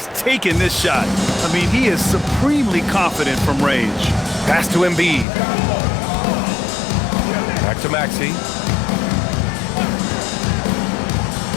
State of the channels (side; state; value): right; drops out; at 5.2 s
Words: taking this shot. I mean, he is supremely confident from range. Pass to Embiid. Back to Maxey.